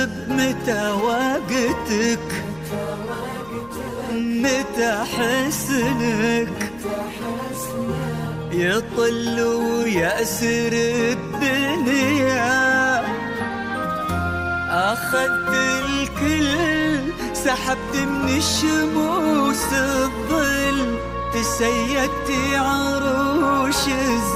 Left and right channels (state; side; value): noise; left; hum, 24 dB below the sound